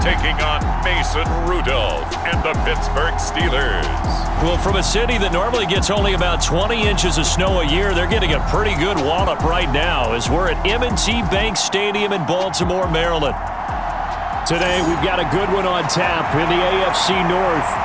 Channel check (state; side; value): identical; both; correlation 1.00